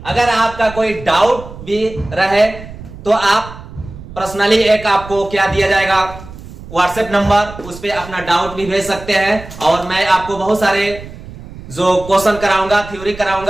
अगर आपका कोई डाउट भी रहे तो आप पर्सनली एक आपको क्या दिया जाएगा व्हाट्सएप नंबर, उस पर अपना डाउट भी भेज सकते हैं और मैं आपको बहुत सारे जो क्वेश्चन कराऊंगा, थ्योरी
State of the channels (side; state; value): right; noise; rumble, 15 dB below the sound